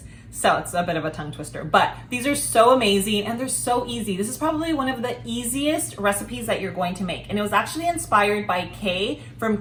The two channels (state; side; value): identical; both; correlation 1.00